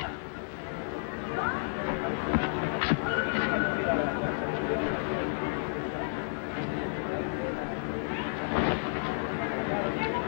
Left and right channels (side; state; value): right; silent; 57 dB below the other